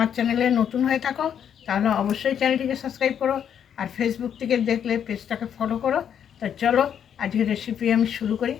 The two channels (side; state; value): right; quieter; 8.7 dB